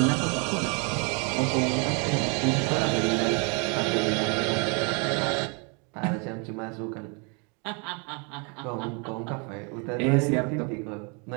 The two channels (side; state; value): left; quieter; 34.3 dB